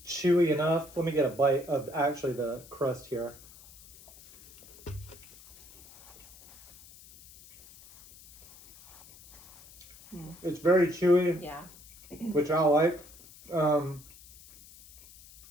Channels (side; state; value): left; noise; hiss, 22 dB below the sound